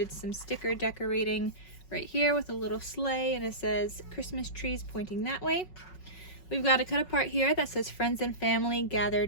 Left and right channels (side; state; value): right; late; 5.4 ms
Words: some sticker decorating right here with a little sleigh, and it says Christmas trees pointing that way. We've got a cut apart here that says "Friends and family